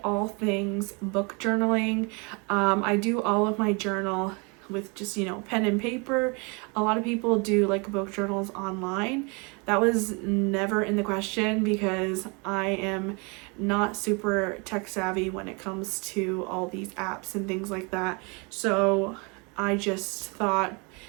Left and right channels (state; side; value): quieter; left; 31.0 dB